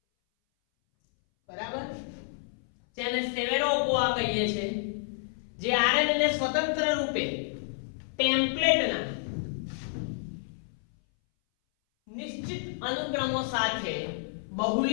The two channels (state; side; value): silent; right; 58 dB below the other